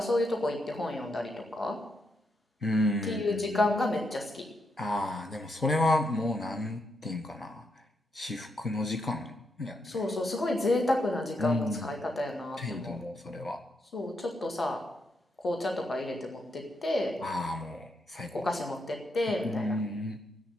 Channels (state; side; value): normal; both; correlation 0.80